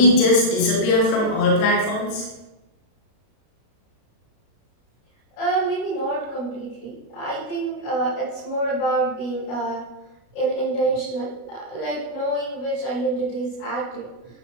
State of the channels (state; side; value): late; right; 33 ms